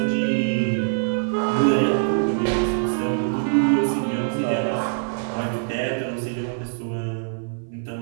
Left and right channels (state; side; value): silent; left; 56 dB below the other